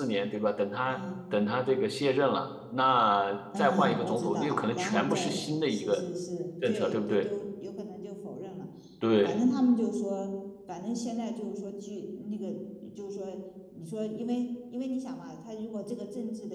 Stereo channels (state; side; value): identical; both; correlation 1.00